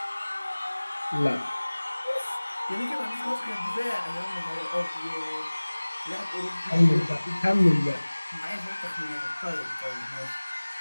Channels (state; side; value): inverted; both; correlation -1.00